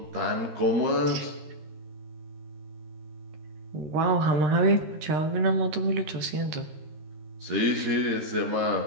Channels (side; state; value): left; late; 13 ms